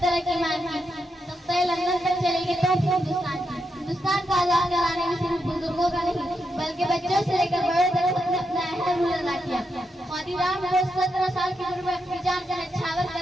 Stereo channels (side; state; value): both; normal; correlation 0.83